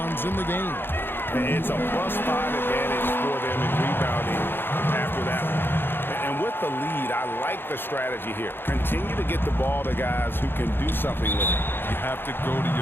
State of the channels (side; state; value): right; late; 0.10 ms